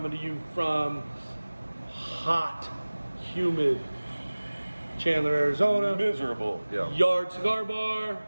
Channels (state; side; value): inverted; both; correlation -1.00